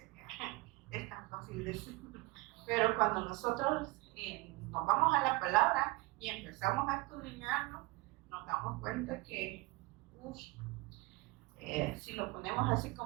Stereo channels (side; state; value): left; quieter; 23.2 dB